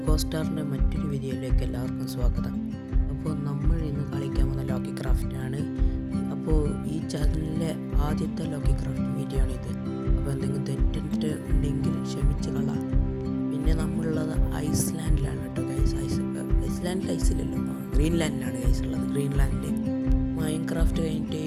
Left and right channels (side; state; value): both; identical; correlation 1.00